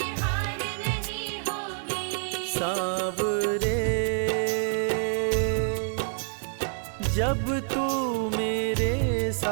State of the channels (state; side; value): silent; left; digital silence